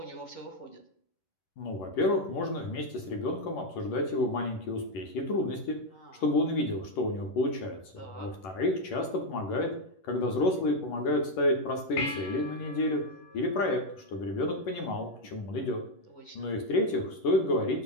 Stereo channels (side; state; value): right; late; 11 ms